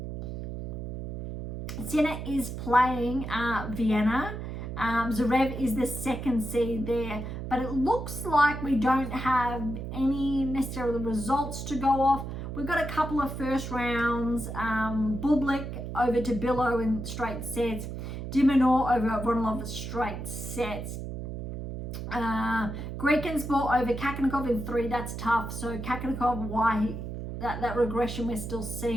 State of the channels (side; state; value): right; noise; hum, 7 dB below the sound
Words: Sinner is playing Vienna. Zverev is the second seed there, but it looks like we don't have any necessarily results to go off. We've got a couple of first rounds. Bublik over to Billow in straight sets. Dimonor over Ronalov straight sets. Grekensport over Kakanakov in 3. That's tough. So Kakanakov, that regression we're still